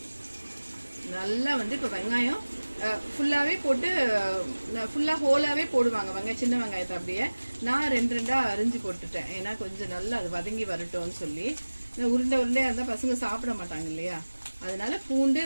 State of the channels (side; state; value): both; inverted; correlation -1.00